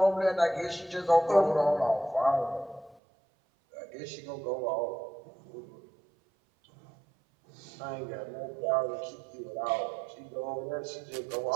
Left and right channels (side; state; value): left; drops out; at 3.0 s